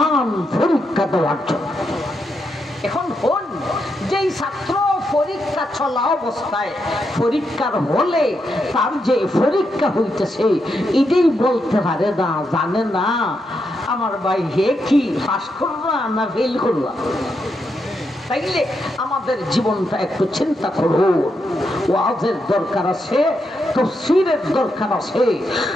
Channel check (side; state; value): both; normal; correlation 0.82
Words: পরীক্ষা দেওয়ার জন্য। এখন হন যেই ছাত্র পরীক্ষা চলা অবস্থায় পরীক্ষার হলে তার যে পরীক্ষা হইতেছে এটাই বলতে পারে না, জানে না, আমার ভাই হে কি পাস করবা না ফেল করবা, চাইলে আমাদের জীবনটা একটু চিন্তা করুন। ওয়াজের দরকার আছে, তাফসীরের দরকার আছে।